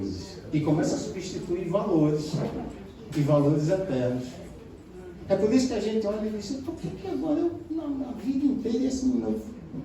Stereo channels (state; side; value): identical; both; correlation 1.00